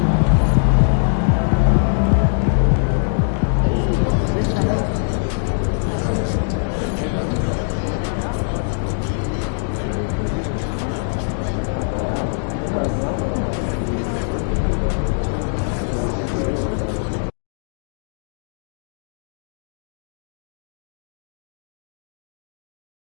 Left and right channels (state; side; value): silent; right; digital silence